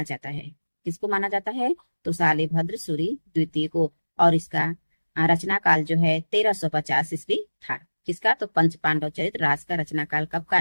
जाता है। किसको माना जाता है? तो शालिभद्र सूरि द्वितीय को। और इसका रचना काल जो है 1350 ईस्वी था। किसका? तो पंच पांडव चरित्र रास का रचना काल कब का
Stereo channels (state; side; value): inverted; both; correlation -1.00